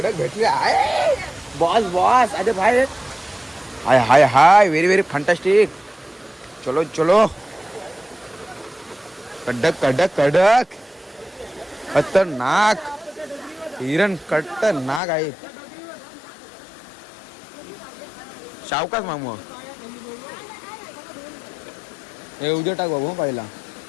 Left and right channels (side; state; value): right; drops out; at 15.0 s